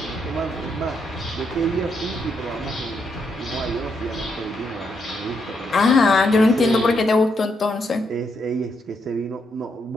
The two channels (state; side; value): normal; both; correlation 0.79